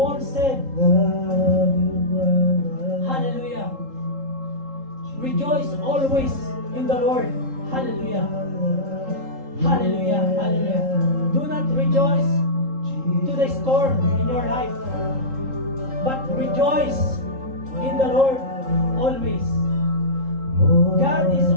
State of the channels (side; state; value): left; late; 3.7 ms